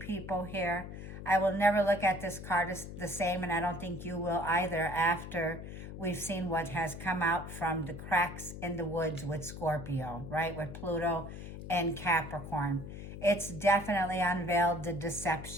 here. I will never look at this card as the same, and I don't think you will either after we've seen what has come out from the cracks in the woods with Scorpio, right? With Pluto and Capricorn. It's definitely unveiled the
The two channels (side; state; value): left; noise; hum, 10 dB below the sound